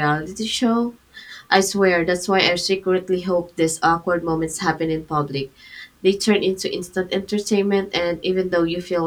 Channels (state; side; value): identical; both; correlation 1.00